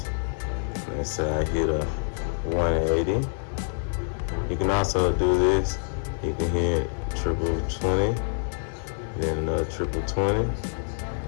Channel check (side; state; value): right; silent; digital silence